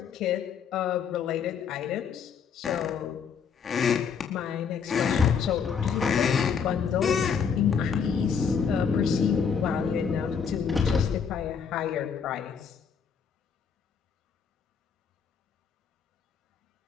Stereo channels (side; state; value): right; quieter; 6.6 dB